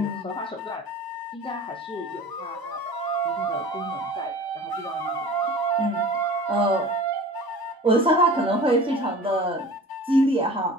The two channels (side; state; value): both; normal; correlation 0.40